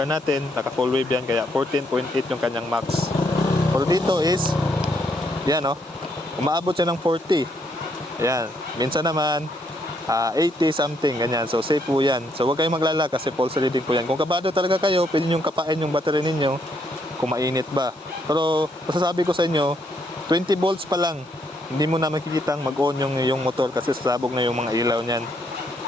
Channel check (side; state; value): both; normal; correlation 0.73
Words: natin, naka full wave yan, kaya 14.8 yung kanyang max. Pero dito is, yan, no, umaabot siya ng 40. Yan, minsan naman 80 something, ganyan. So safe po yan. So huwag kayong maglala kasi pulse reading po yan. Kung kabado talaga kayo, pwede nyo kapain yung battery ninyo kung mainit ba. Pero masasabi ko sa inyo, 20 volts pa lang, hindi mo na makikitang mag-on yung motor kasi sasabog na yung mga ilaw niyan.